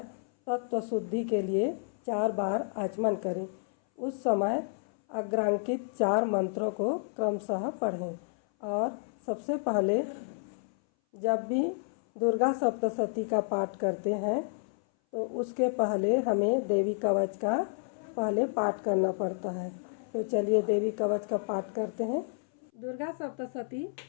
तत्व शुद्धि के लिए 4 बार आचमन करें। उस समय अग्रांकित 4 मंत्रों को क्रमशः पढ़ें। और सबसे पहले जब भी दुर्गा सप्तशती का पाठ करते हैं तो उसके पहले हमें देवी कवच का पहले पाठ करना पड़ता है। तो चलिए देवी कवच का पाठ करते हैं। दुर्गा सप्तशती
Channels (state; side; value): silent; right; 57 dB below the other